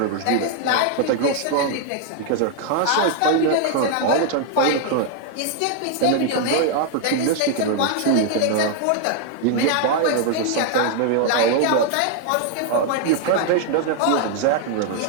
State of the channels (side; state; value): both; different; correlation 0.00